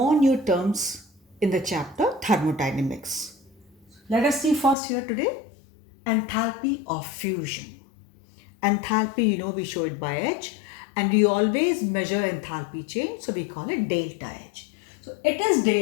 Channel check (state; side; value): drops out; right; at 4.8 s